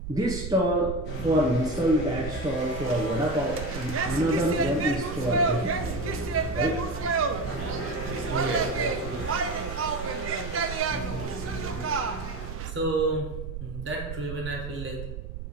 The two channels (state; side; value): noise; right; rumble, 8 dB below the sound